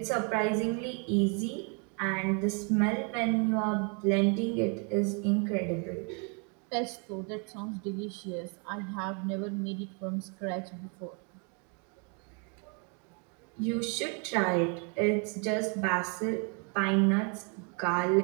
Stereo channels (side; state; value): left; quieter; 36.7 dB